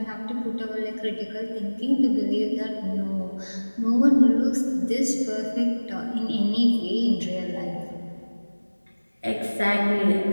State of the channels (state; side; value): inverted; both; correlation -1.00